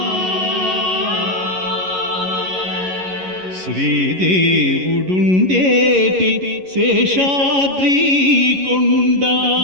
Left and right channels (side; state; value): left; late; 11 ms